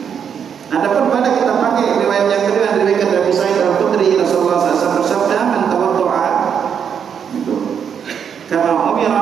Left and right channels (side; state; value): left; quieter; 7.6 dB